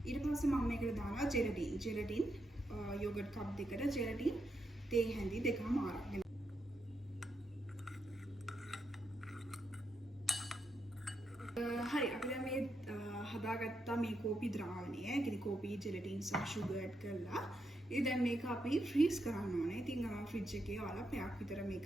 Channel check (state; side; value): normal; both; correlation 0.82